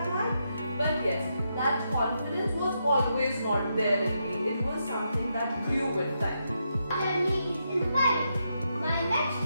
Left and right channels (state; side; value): inverted; both; correlation -0.82